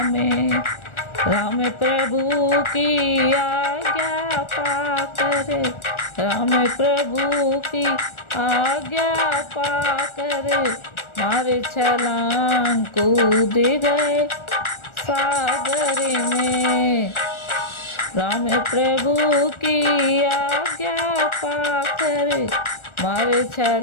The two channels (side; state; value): right; late; 1.4 ms